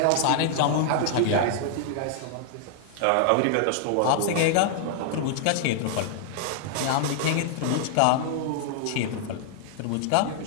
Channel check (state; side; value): different; both; correlation -0.01